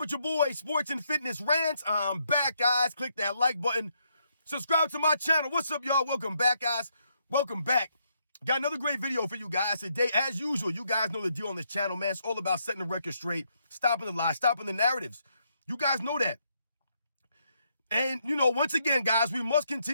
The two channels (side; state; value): both; inverted; correlation -0.76